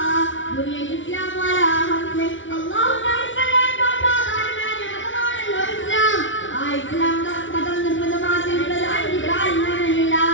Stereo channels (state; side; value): late; right; 0.56 ms